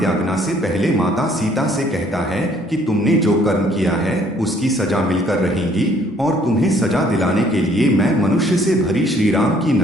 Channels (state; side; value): normal; both; correlation 0.61